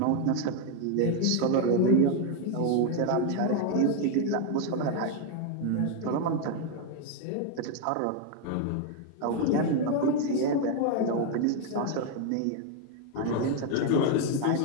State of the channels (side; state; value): both; different; correlation 0.01